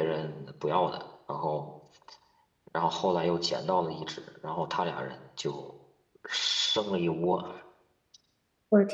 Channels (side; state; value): both; identical; correlation 1.00